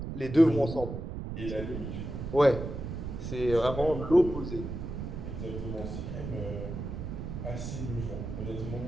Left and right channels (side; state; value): right; noise; rumble, 6 dB below the sound